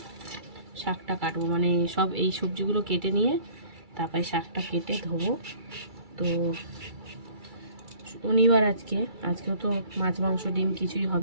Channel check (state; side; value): late; left; 2.3 ms